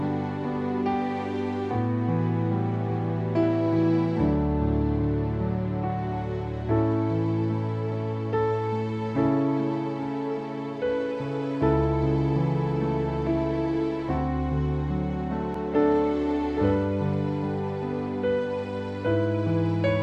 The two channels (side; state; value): both; identical; correlation 1.00